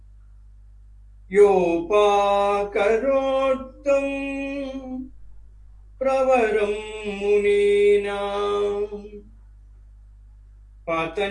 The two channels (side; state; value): both; identical; correlation 1.00